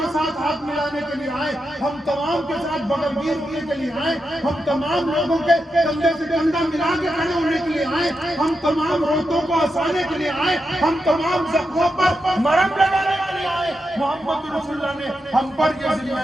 ساتھ ہاتھ ملانے کے لیے آئے، ہم تمام کے ساتھ بغل گیر ہونے کے لیے آئے، ہم تمام لوگوں کے کندھے سے کندھا ملا کے کھڑے ہونے کے لیے آئے، ہم تمام روتوں کو ہنسانے کے لیے آئے، ہم تمام زخموں پر مرہم لگانے کے لیے آئے. محمد رسول اللہ نے ہم پر یہ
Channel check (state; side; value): normal; both; correlation 0.87